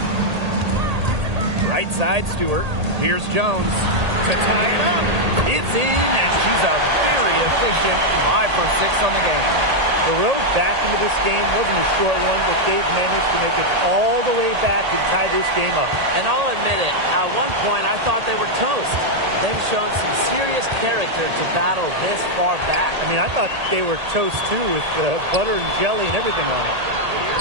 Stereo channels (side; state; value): left; late; 1.8 ms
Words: Right side, Stewart. Here's Jones to tie it up. It's in, and she's a very efficient 5 for 6 on the game. The road back into this game wasn't a short one, but they've managed to make it all the way back and tie this game up. And I'll admit it, at one point I thought they were toast. They've shown some serious character to battle this far back. I mean, I thought they were toast too with butter and jelly and everything on it.